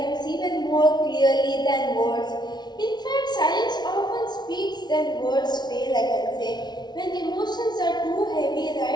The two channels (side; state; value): right; late; 0.20 ms